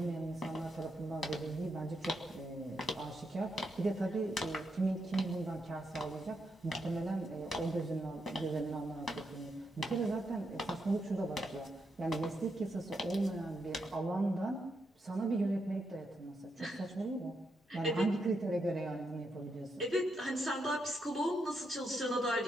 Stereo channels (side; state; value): both; normal; correlation 0.81